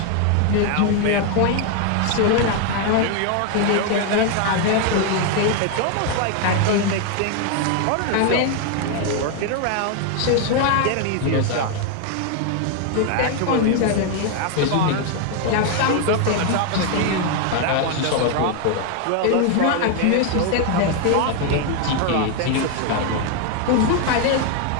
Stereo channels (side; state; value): both; different; correlation 0.01